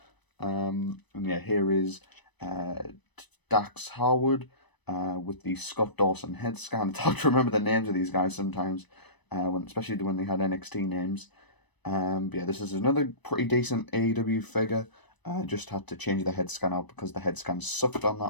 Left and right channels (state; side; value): late; right; 1.0 ms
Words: And yeah, here is Dax Harwood with the Scott Dawson head scan. It's hard to remember the names of these guys sometimes, especially when they had NXT names. But yeah, this is another pretty decent AEW figure. Just had to change the head scan out because the head scan sucked on